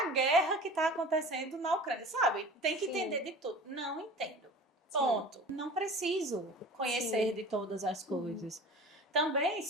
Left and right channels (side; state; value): both; normal; correlation 0.39